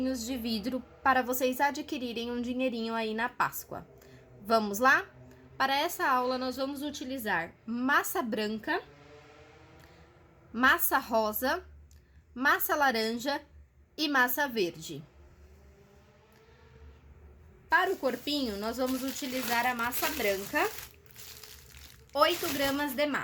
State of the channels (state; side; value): identical; both; correlation 1.00